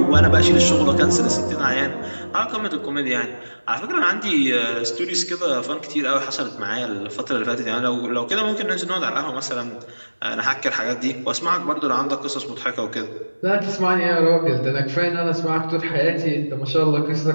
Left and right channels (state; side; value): inverted; both; correlation -1.00